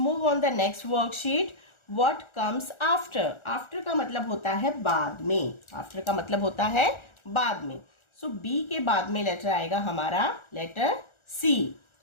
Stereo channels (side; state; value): right; late; 1.4 ms